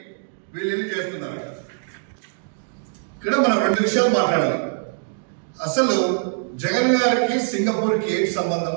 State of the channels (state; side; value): silent; left; digital silence